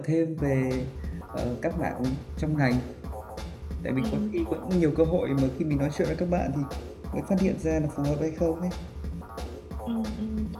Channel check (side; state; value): both; identical; correlation 1.00